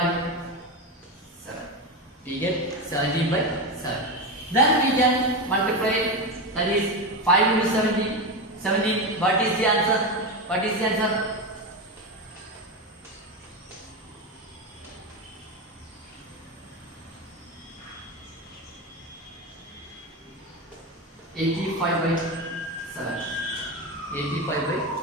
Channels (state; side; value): normal; both; correlation 0.16